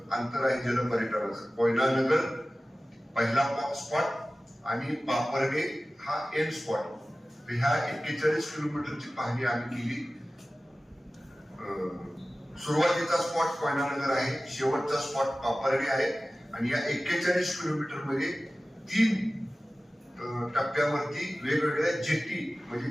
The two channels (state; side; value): normal; both; correlation 0.96